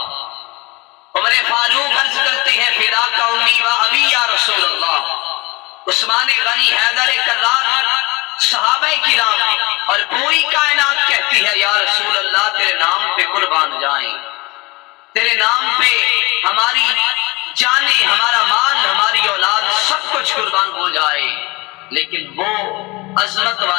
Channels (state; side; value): quieter; right; 23.8 dB